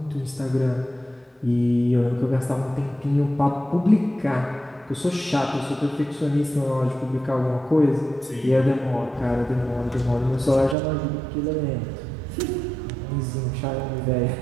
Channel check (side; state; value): left; drops out; at 10.8 s